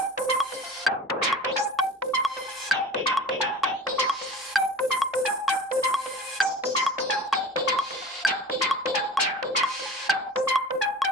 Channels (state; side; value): normal; both; correlation 0.38